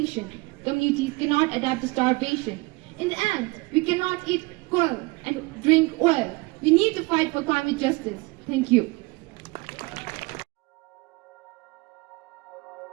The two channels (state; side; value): quieter; left; 24.6 dB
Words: Communities cannot adapt to starvation. In the end, we cannot eat coal and drink oil. We need to fight for climate justice. Thank you.